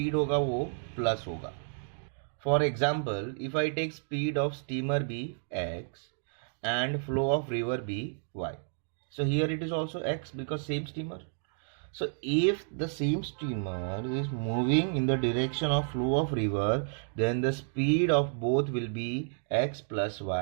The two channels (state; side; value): silent; left; digital silence